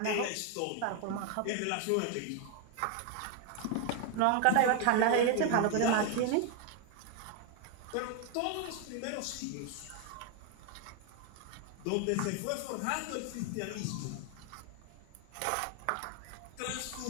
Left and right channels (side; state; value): both; different; correlation 0.01